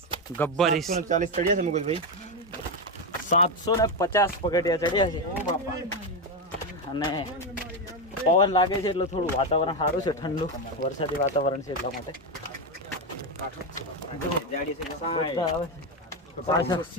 ગબ્બરીસ 40 ચડ્યા છે મુકેશભાઈ. 750 પગથિયા ચડ્યા છે. ઓ બાપા. અને પવન લાગે છે એટલે થોડું વાતાવરણ સારું છે, ઠંડુ વરસાદી વાતાવરણ છે એટલા માટે.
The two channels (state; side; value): normal; both; correlation 0.09